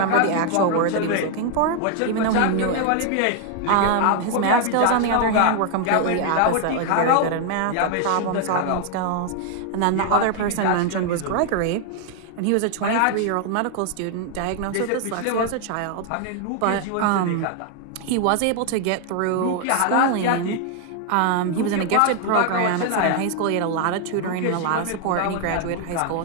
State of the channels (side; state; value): both; different; correlation 0.00